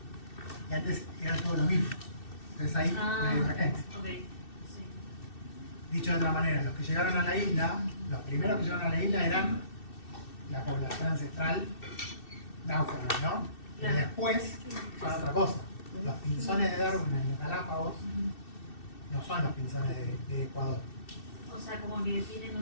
Y antes era todo lo mismo. Entonces ahí una divergencia. Ok, sí. Dicho de otra manera, los que llegaron a la isla, los primeros que llegaron a la isla eran la población ancestral náufraga, ¿no? Pero después son otra cosa. Los pinzones de Darwin en los Galápagos no son los pinzones de Ecuador. O sea, como que tienen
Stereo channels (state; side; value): late; right; 2.6 ms